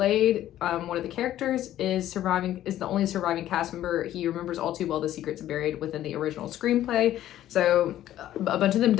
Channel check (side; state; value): right; quieter; 12.8 dB